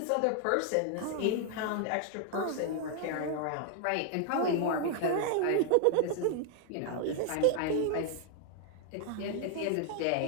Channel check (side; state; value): both; different; correlation 0.00